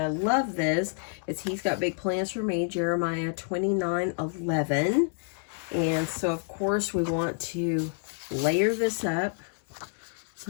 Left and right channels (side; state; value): right; silent; 59 dB below the other